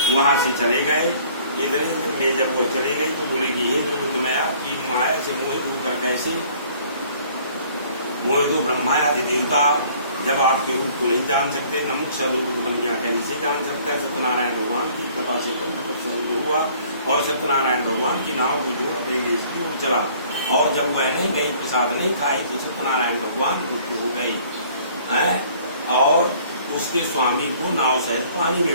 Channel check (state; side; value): inverted; both; correlation -0.55